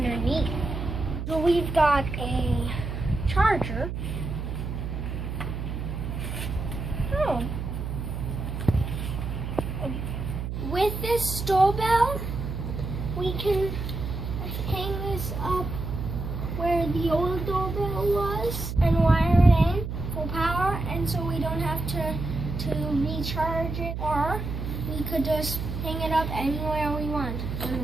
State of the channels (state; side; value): noise; right; hum, 5 dB below the sound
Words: So we've got a charger. Oh. With this doorbell, we can hang this up where the old doorbell was and wire it in full power, and so we don't have to recharge it, or we could just hang it up anywhere we want. On